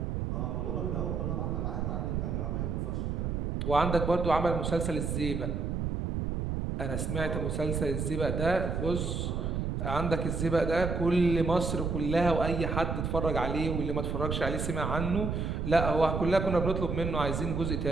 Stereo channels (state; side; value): noise; right; rumble, 1 dB below the sound